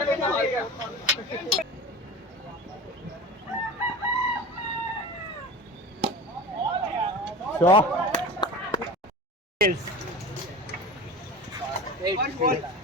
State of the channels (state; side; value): normal; both; correlation 0.32